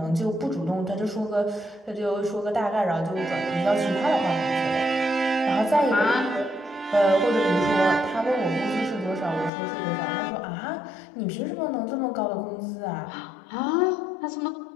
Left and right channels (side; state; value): right; drops out; at 9.5 s